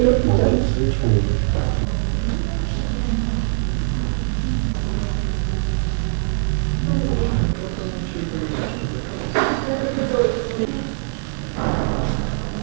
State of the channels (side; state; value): left; silent; 65 dB below the other